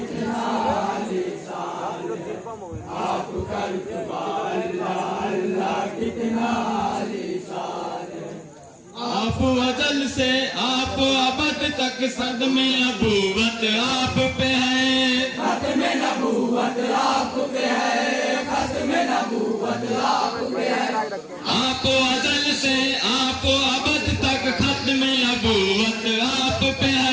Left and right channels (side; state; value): both; identical; correlation 1.00